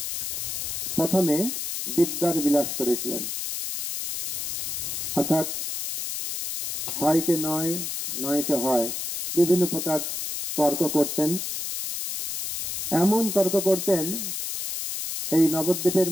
প্রথমে বিদ্যার বিলাস করেছিলেন, অর্থাৎ হয়কে নয়, নয়কে হয়, বিভিন্ন প্রকার তর্ক করতেন। এমন তর্ক করতেন এই নবদ্বীপের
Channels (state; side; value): noise; left; hiss, 4 dB below the sound